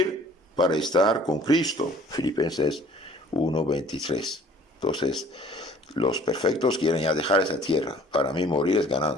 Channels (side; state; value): both; normal; correlation 0.53